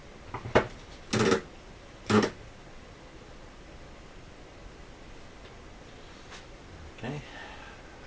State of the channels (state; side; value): identical; both; correlation 1.00